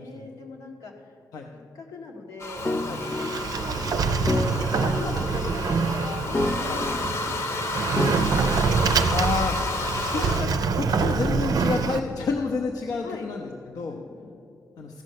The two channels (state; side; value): normal; both; correlation 0.63